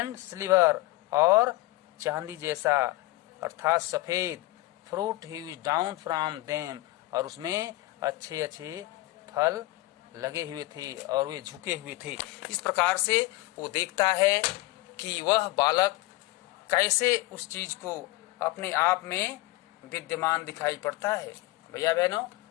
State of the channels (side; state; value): right; quieter; 19.7 dB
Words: सिल्वर, और चांदी जैसा अर्थात सफेद। Fruit he down from them, और उसमें अच्छे अच्छे फल लगे हुए थे और वे झुके हुए थे। इस प्रकार से वो देखता है कि वह बालक कैसे उस चीज को अपने आप में विद्यमान दिखाई पड़ता है। भैया बहनों,